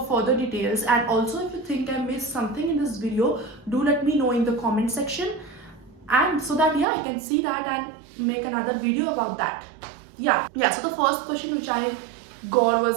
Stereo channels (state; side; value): drops out; left; at 6.9 s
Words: further details. And also, if you think I missed something in this video, do let me know in the comment section, and so that I can see that and make another video about that. Yeah, so the first question which I got